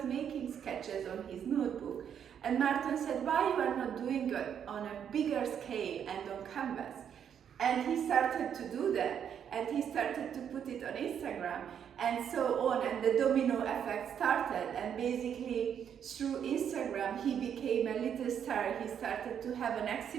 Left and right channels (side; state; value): left; quieter; 8.5 dB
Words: making sketches on his notebook. And Márton said, "Why you are not doing it on a bigger scale and on canvas?" And he started to do that, and he started to put it on Instagram, and so on, and the domino effect started, and basically through Instagram he became a little star. He started to have an